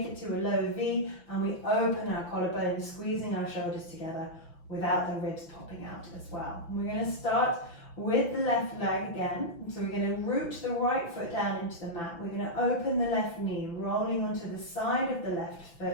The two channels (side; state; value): right; late; 5.9 ms